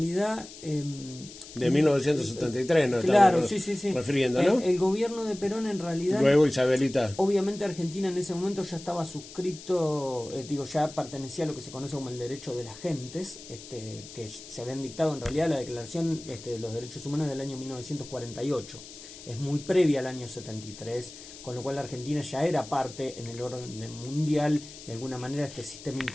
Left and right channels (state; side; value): noise; left; hiss, 16 dB below the sound